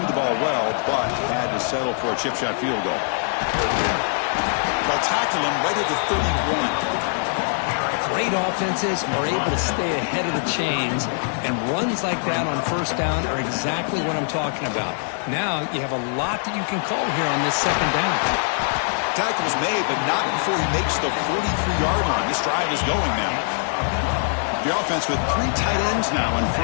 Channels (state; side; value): silent; right; digital silence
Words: the ball well, but had to settle for a chip shot field goal. They'll tackle him right at the 31. Great offenses are able to stay ahead of the chains, and runs like that on first down are exactly what I'm talking about. Now you have a lot that you can call here on this 2nd down. Tackle's made, but not before he makes the 43-yard line. This drive is going now. The offense with 3 tight ends now on